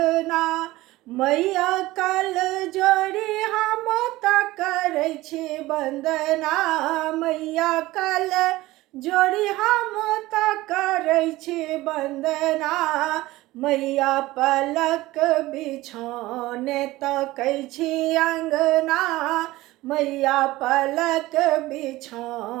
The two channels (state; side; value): quieter; left; 18.3 dB